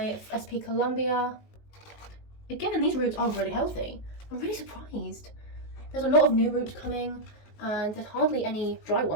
SP Columbia. Again, these roots are really healthy. I'm really surprised. There's a lot of new roots coming, and there's hardly any dry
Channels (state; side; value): late; right; 19 ms